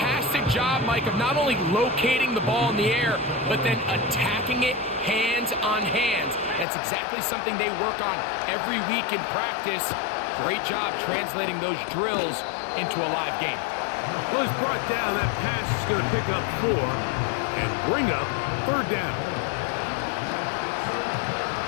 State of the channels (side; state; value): right; drops out; at 6.7 s